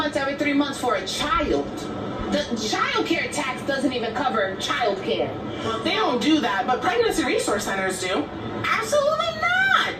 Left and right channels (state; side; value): identical; both; correlation 1.00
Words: every 3 months for a child? The child care tax doesn't even cover child care. Well, they don't do that, but pregnancy resource centers do. Absolutely not.